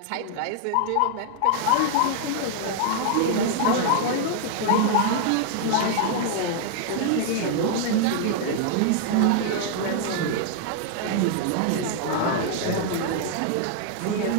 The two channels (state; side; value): different; both; correlation 0.00